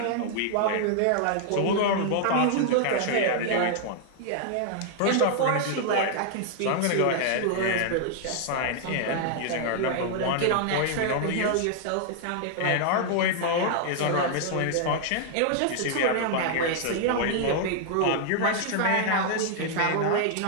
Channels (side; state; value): both; different; correlation 0.00